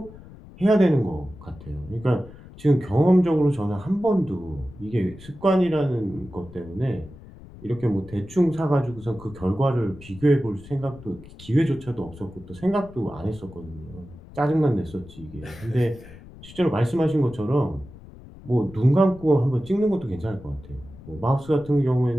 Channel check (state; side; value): noise; left; rumble, 18 dB below the sound